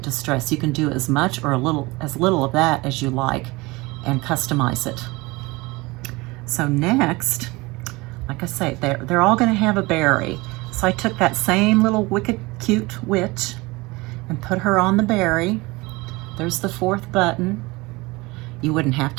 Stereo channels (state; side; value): quieter; left; 23.0 dB